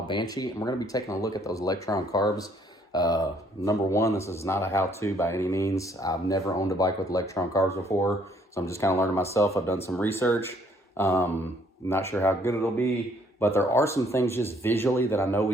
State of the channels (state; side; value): normal; both; correlation 0.64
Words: Banshee, and we're going to be taking a look at those Lectron carbs. Number one, this is not a how-to by any means. I've never owned a bike with Lectron carbs before, so I'm just kind of learning myself. I've done some research. Not sure how good it'll be, but there are some things just visually that I know we